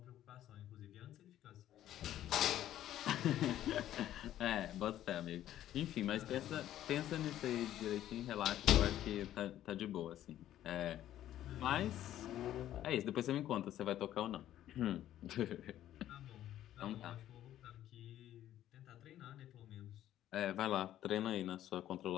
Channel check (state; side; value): quieter; right; 12.4 dB